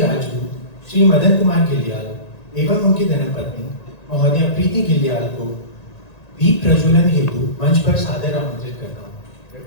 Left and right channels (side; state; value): right; late; 1.8 ms